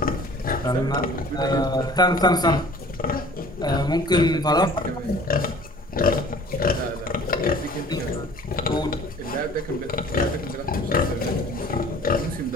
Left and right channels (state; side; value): normal; both; correlation 0.48